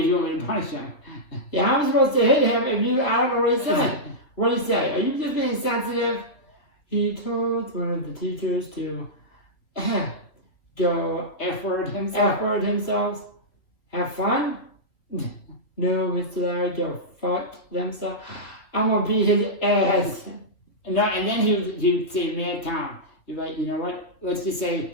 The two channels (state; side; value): late; right; 3.0 ms